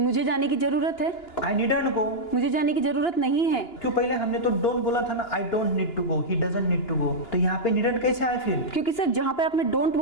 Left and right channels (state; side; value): late; right; 2.9 ms